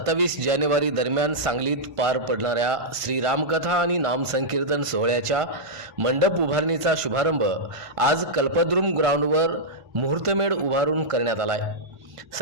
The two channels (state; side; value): late; left; 1.5 ms